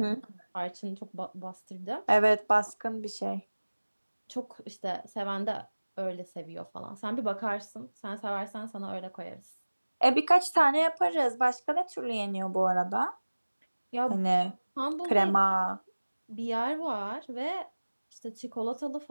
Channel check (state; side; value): inverted; both; correlation -1.00